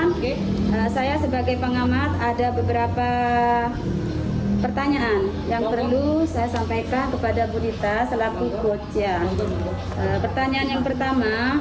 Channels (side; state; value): both; identical; correlation 1.00